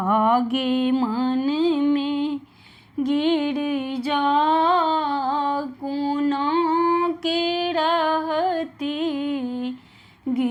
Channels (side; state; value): both; identical; correlation 1.00